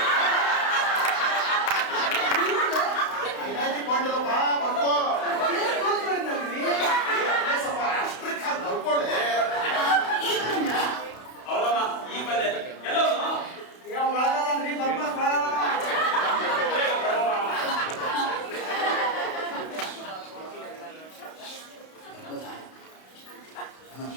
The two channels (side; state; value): right; late; 32 ms